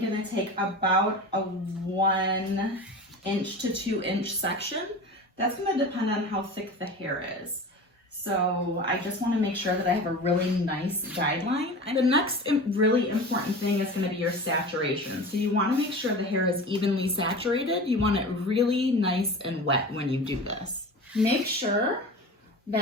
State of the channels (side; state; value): both; normal; correlation 0.33